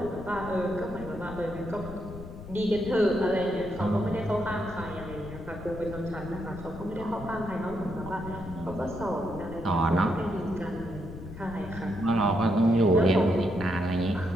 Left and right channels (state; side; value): noise; left; rumble, 12 dB below the sound